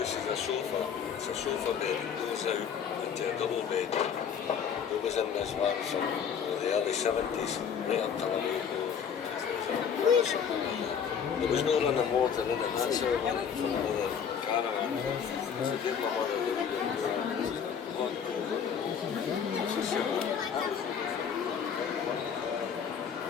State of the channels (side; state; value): right; quieter; 7.4 dB